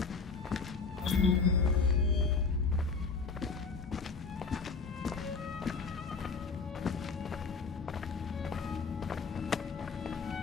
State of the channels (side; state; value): right; quieter; 4.7 dB